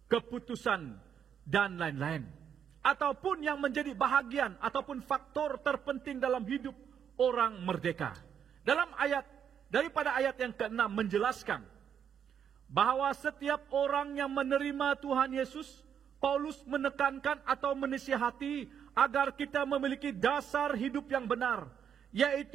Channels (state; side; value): quieter; left; 8.3 dB